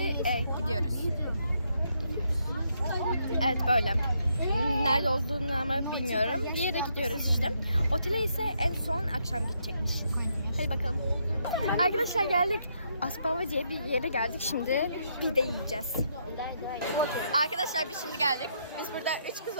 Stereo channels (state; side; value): inverted; both; correlation -0.76